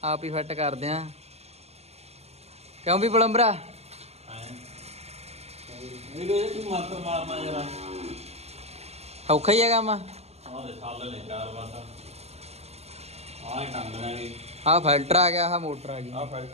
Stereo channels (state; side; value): late; left; 0.31 ms